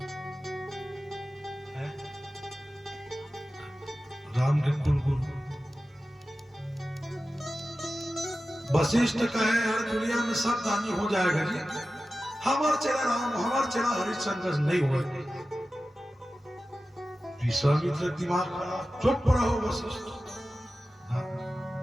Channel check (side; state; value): both; normal; correlation 0.94